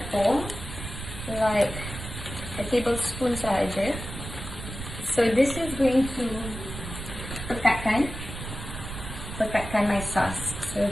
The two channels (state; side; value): noise; right; rumble, 9 dB below the sound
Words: like a tablespoon sahaja. So this is going to pekatkan my sauce. So